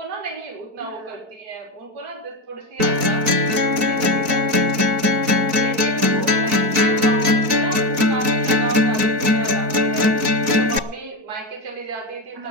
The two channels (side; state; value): left; late; 4.6 ms